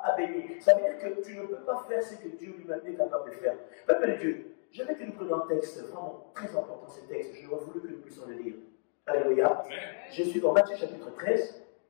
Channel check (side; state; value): right; silent; digital silence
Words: béni? Ça veut dire que tu ne peux pas faire ce que Dieu lui-même est capable de faire. Peuple de Dieu, j'aimerais que nous prenions un texte vraiment très important, ce texte. Je voulais voulu que nous puissions le lire. Alléluia. Je suis dans Matthieu chapitre 13